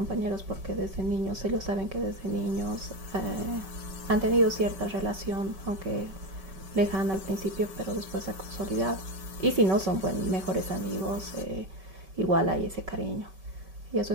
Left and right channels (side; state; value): left; late; 5.2 ms